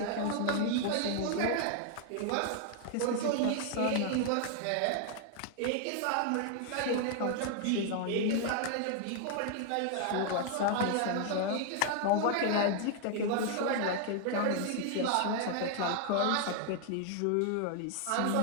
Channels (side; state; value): both; different; correlation 0.00